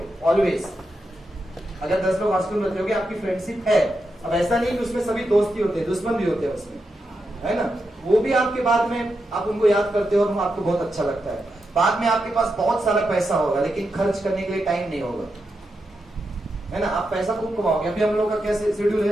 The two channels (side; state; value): both; normal; correlation 0.86